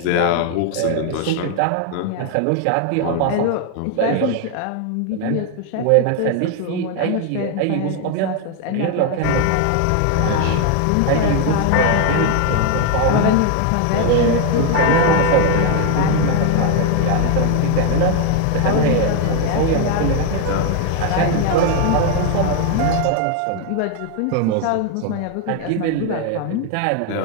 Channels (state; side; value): different; both; correlation 0.01